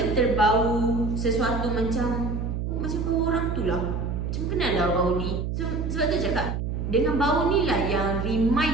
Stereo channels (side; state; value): right; noise; hum, 3 dB below the sound